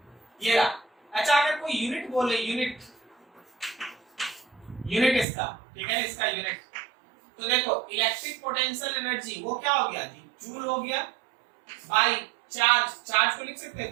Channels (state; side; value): drops out; left; at 5.2 s